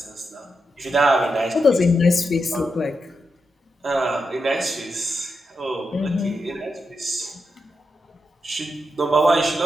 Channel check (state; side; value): normal; both; correlation 0.86